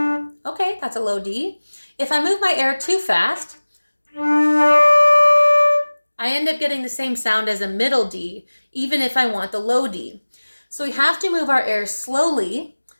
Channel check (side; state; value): both; inverted; correlation -1.00